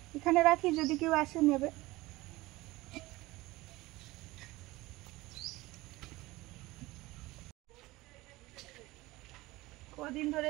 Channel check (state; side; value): quieter; left; 19.8 dB